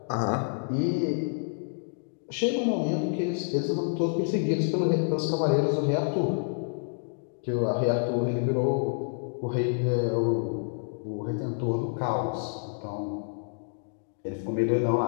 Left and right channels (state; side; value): silent; right; digital silence